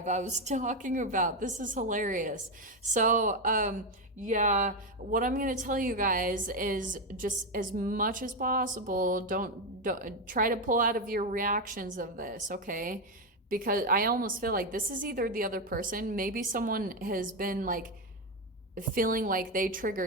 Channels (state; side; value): normal; both; correlation 0.08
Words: I was talking about. This is hilarious. So, yeah, what I'm going to tell you guys is, just as much as possible, don't try to pull out of your reactions of this, okay? Because I almost feel like this is either the other person, maybe someone has been like feeling like they